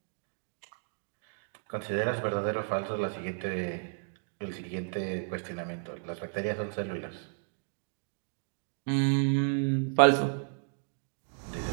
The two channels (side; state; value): left; silent; 56 dB below the other